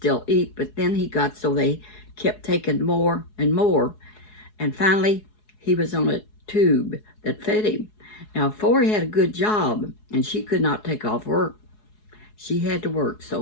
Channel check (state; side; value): late; right; 4.7 ms